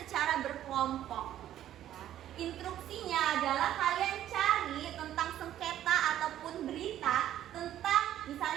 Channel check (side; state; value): left; quieter; 11.9 dB